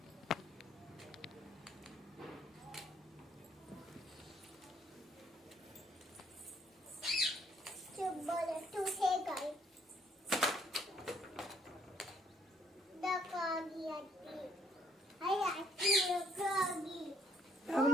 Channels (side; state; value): both; normal; correlation 0.66